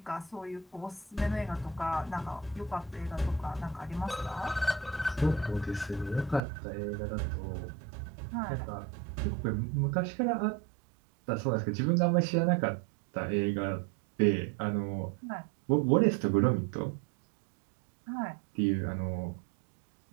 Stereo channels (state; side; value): drops out; left; at 6.4 s